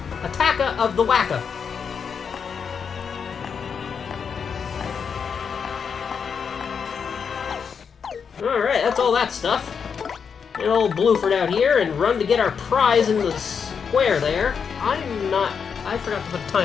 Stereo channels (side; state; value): right; quieter; 6.5 dB